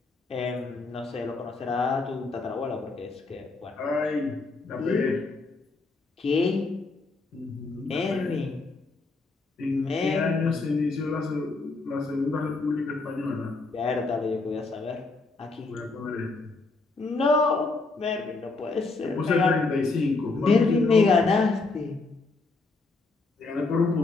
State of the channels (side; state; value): right; quieter; 3.7 dB